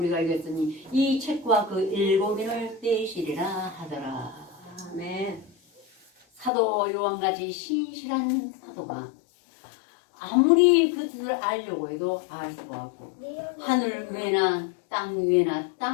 이겼으니 이 책과 그 7인을 떼시리라 하더라. 아멘. 사도 요한같이 신실한 사도가 아무리 그 뜻을 알려고 해도 알 수가 없고 하늘 위나 땅 위나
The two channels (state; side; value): drops out; right; at 6.5 s